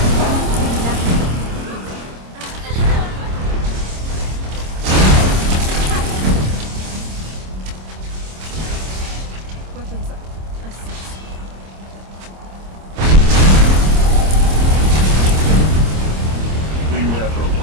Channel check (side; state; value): left; late; 26 ms